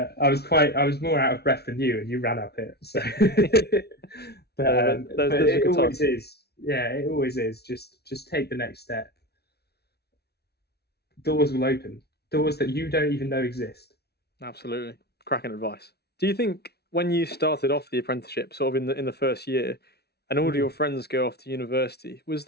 was more out of breath than you, and you ran up it. So, but it always is. Yeah, it always is. Just take the next step. Doors will open. Doors that you don't even know exist. Absolutely, cracking advice. Do you think when you started off the apprenticeship, sort of in the first year, and all of your friends go off to university, was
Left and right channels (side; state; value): right; late; 0.47 ms